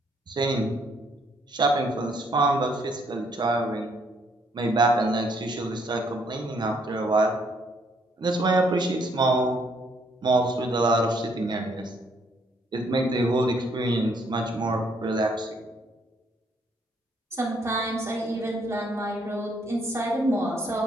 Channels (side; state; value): both; normal; correlation 0.69